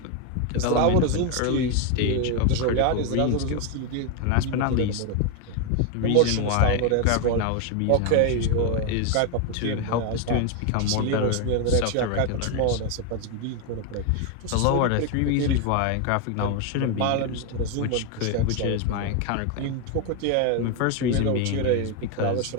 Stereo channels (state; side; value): different; both; correlation 0.01